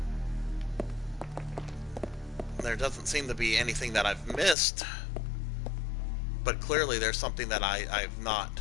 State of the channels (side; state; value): right; drops out; at 4.5 s